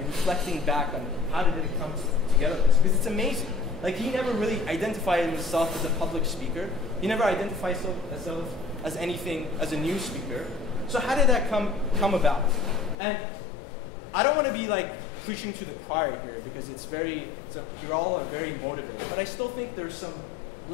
back on how did it come together, because it's amazing. Like, he never really identified himself as a public speaker. He never identified himself as anything, as a news speaker. So how did that come about? And I don't want to be like preaching to the choir here, because you all are very motivated. But I still think there's some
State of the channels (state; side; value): drops out; right; at 13.0 s